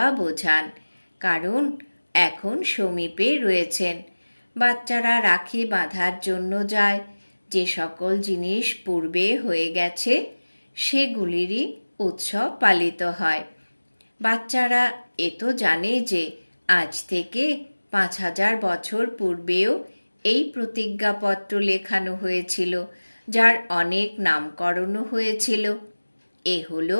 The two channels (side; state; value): both; inverted; correlation -1.00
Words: বোঝান, কারণ এখন সমীপে রয়েছেন। বাচ্চারা রাখি বাঁধার জন্য যায়। যে সকল জিনিস পূর্বে হয়ে গেছে সেগুলিরই উৎসব পালিত হয়। বাচ্চারা এ তো জানে যে আজ থেকে 5000 বছর পূর্বেও এই প্রতিজ্ঞাপত্র লেখানো হয়েছিল, যার অনেক নামকরণও হয়েছিল। এ হলো